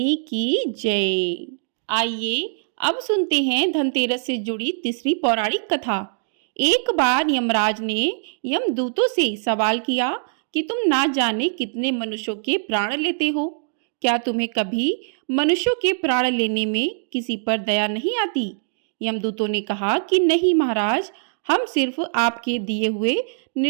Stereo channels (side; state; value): left; silent; digital silence